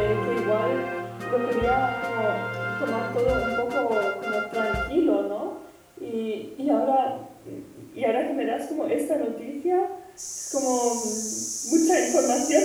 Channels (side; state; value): both; identical; correlation 1.00